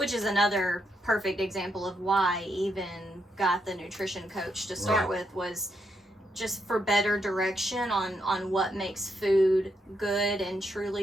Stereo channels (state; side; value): normal; both; correlation 0.79